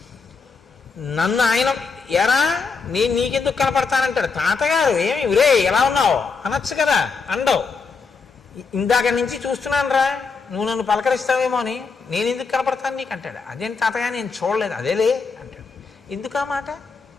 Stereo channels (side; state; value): right; quieter; 4.9 dB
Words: నన్ను ఆయన ఎరా నేను నీకెందుకు కనపడతానంటాడు. తాతగారు ఏమి ఉరే ఎలా ఉన్నావు అనొచ్చు కదా, అండవు. ఇందాక నుంచి చూస్తున్నాను రా, నువ్వు నన్ను పలకరిస్తావేమో అని, నేను ఎందుకు కనపడతాను నీకు అంటాడు. అదేంటి తాతగా నేను చూడలేదు, అదేలే అంటాడు. ఎందుకు ఆ మాట?